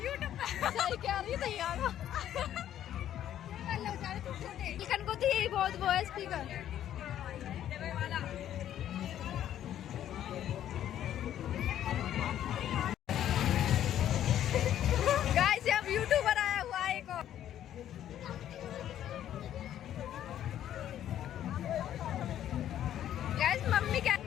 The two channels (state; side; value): quieter; right; 11.2 dB